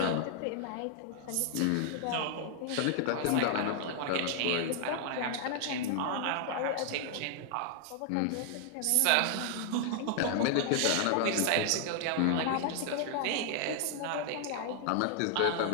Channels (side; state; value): both; different; correlation 0.00